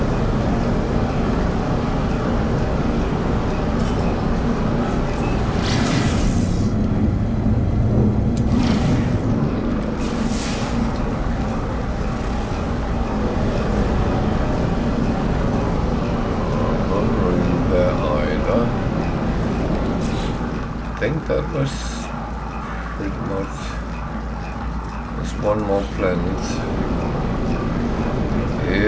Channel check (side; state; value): both; identical; correlation 1.00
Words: I think that was pretty much. There's one more planet.